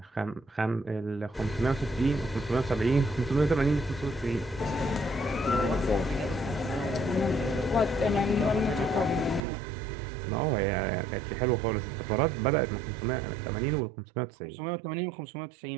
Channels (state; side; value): drops out; left; at 9.4 s